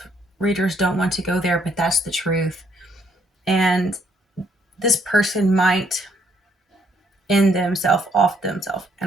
readers don't want to go there, but that's the truth. and this person might end themselves off themselves.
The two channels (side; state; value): both; normal; correlation 0.69